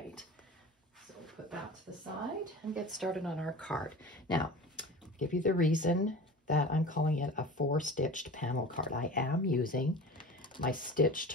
so put that to the side and get started on our card. Now, I'll give you the reason that I'm calling it a 4-stitched panel card. I am using my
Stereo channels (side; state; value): both; normal; correlation 0.36